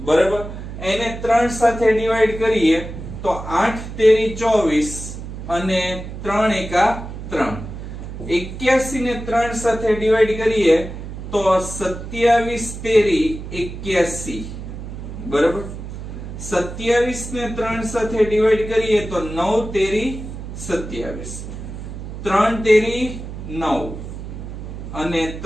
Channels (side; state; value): right; noise; hum, 9 dB below the sound